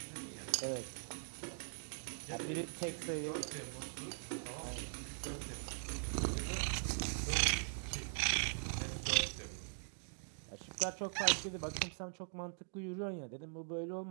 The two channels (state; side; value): silent; left; digital silence